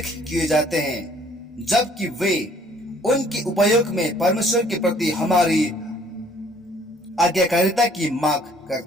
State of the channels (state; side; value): normal; both; correlation 0.59